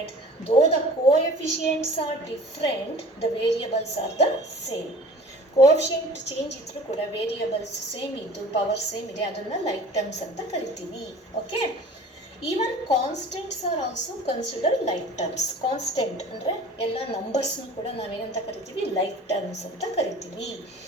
though the coefficients are different, the variables are the same. Coefficient change idru kuda variables same iddu power same ide, adanna like terms anta kariತೀವಿ. Okay. Even constants are also considered like terms. Constant ಅಂದರೆ ಎಲ್ಲ ನಂಬರ್ಸ್ನು ಕೂಡ ನಾವೇನಂತ ಕರಿತೀವಿ? ಲೈಕ್ ಟರ್ಮ್ಸ್ ಅಂತ ಕರಿತೀವಿ.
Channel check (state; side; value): normal; both; correlation 0.45